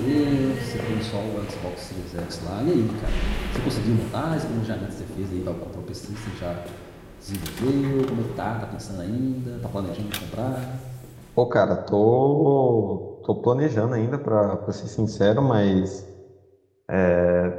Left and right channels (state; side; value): identical; both; correlation 1.00